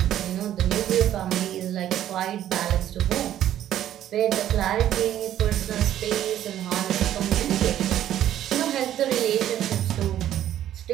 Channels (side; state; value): left; quieter; 11.7 dB